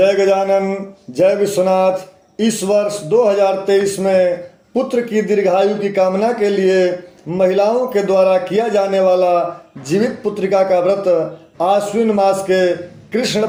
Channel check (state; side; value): identical; both; correlation 1.00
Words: गजानन, जय विश्वनाथ। इस वर्ष 2023 में पुत्र की दीर्घायु की कामना के लिए महिलाओं के द्वारा किया जाने वाला जीवित पुत्रिका का व्रत आश्विन मास के कृष्ण